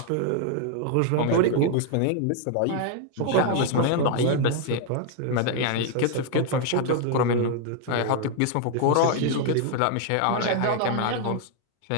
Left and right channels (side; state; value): both; different; correlation 0.00